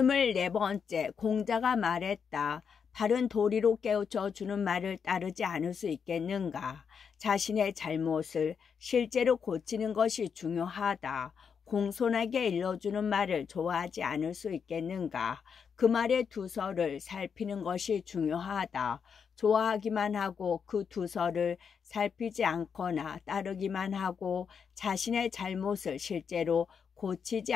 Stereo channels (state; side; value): quieter; right; 6.6 dB